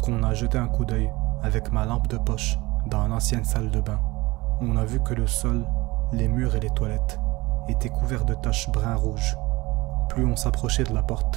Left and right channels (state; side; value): quieter; left; 21.6 dB